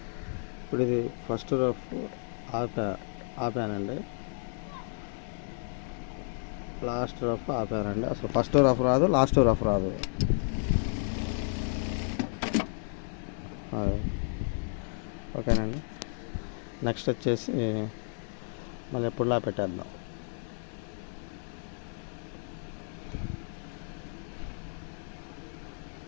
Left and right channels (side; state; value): right; silent; 56 dB below the other